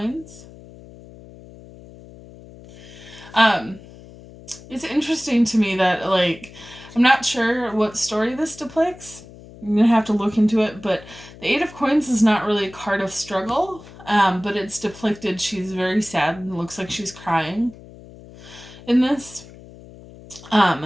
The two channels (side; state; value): left; noise; hum, 19 dB below the sound